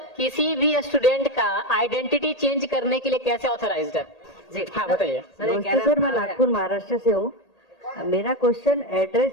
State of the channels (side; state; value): right; late; 1.8 ms